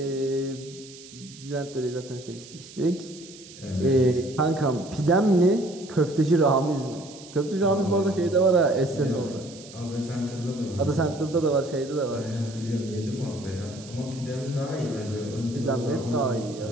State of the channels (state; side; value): noise; right; hiss, 18 dB below the sound